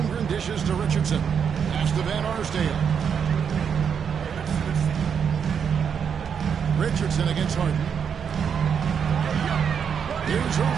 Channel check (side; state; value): left; quieter; 7.2 dB